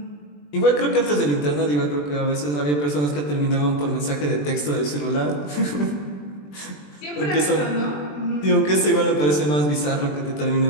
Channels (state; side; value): late; right; 20 ms